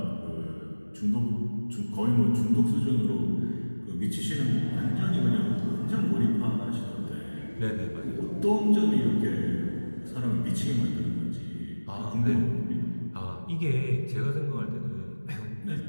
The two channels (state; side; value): inverted; both; correlation -1.00